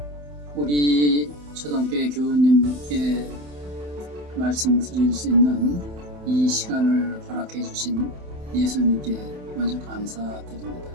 우리 초등교회 교우님께 말씀드릴 수 있는 이 시간을 허락해 주신 예수님께 먼저 감사드립니다.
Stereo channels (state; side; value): late; left; 27 ms